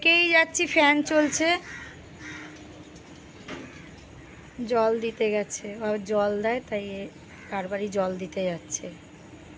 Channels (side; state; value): both; identical; correlation 1.00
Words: যাচ্ছি, ফ্যান চলছে। জল দিতে গেছে, ও জল দেয়, তাই কারবারই জল দিতে যাচ্ছে।